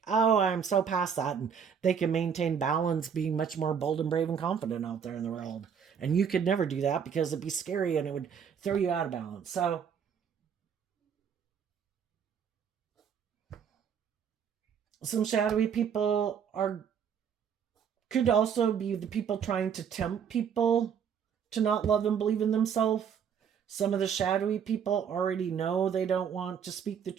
oh, I'm so past that. And they can maintain balance being much more bold and brave and confident out there in the world. And you could never do that because it'd be scary and it would throw you out of balance. So some shadowy people could also be the people trying to tempt people to not love and believe in themselves. Some of the shadowy people already know they don't want to speak the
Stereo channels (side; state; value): left; quieter; 7.5 dB